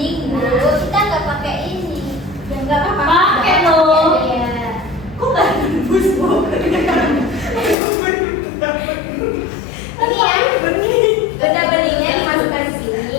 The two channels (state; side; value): drops out; right; at 7.8 s